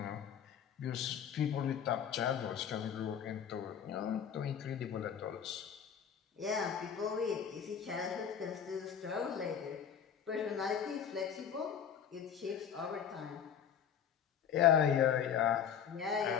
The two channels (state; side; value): quieter; right; 8.2 dB